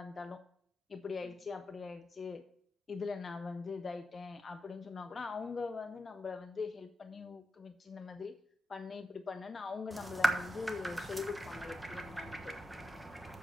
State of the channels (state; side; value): normal; both; correlation 0.89